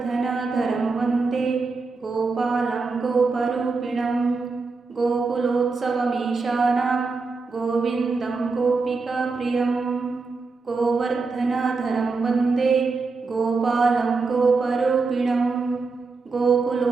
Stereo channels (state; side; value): quieter; left; 4.2 dB